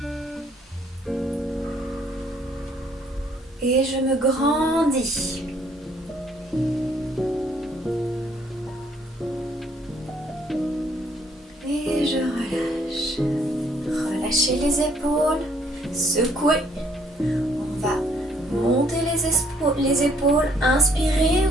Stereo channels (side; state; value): both; normal; correlation 0.65